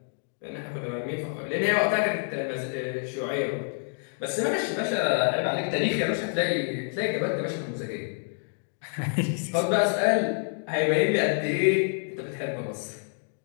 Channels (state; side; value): silent; right; 60 dB below the other